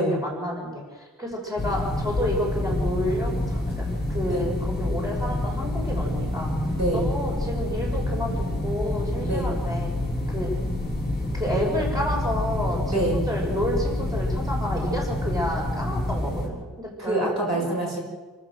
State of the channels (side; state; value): both; normal; correlation 0.64